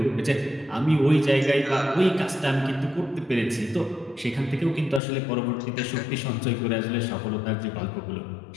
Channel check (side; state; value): right; drops out; at 5.0 s